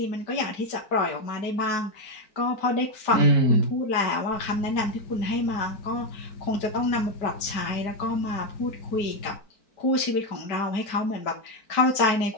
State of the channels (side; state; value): right; late; 4.5 ms